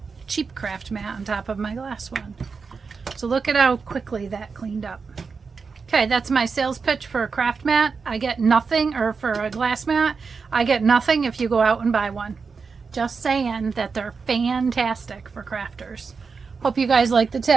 cheap craft mat on top of my glass one. So look at how quickly that cleaned up. Okay, that's my sales pitch for a craft mat. I get nothing, or for a glass mat, I get nothing if you go out and buy one. Just saying that they're fantastic for crafters. Hope you guys like the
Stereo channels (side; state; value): left; quieter; 5.1 dB